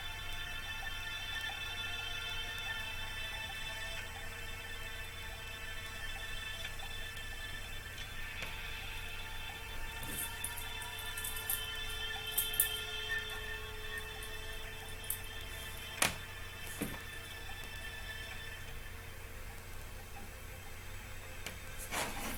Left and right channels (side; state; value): both; identical; correlation 1.00